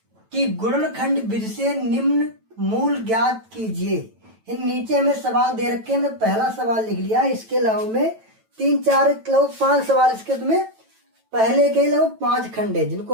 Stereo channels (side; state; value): left; late; 9.1 ms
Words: कि गुणनखंड विधि से निम्न मूल ज्ञात कीजिए। इन नीचे हमें सवाल दे रखे हैं, मैंने पहला सवाल लिख लिया। इसके अलावा में 3-4 लगभग 5 सवाल इसके तुम्हें पहले के लगभग 5 खंड है जिनको